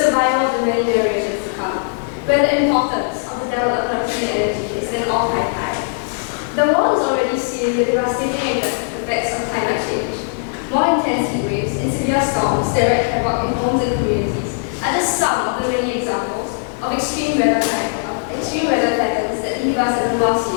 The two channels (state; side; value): silent; right; digital silence